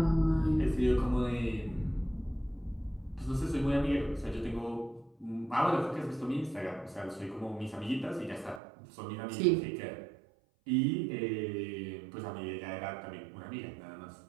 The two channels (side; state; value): left; drops out; at 8.6 s